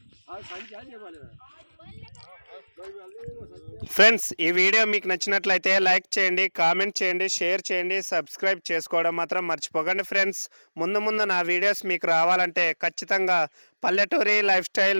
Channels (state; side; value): inverted; both; correlation -1.00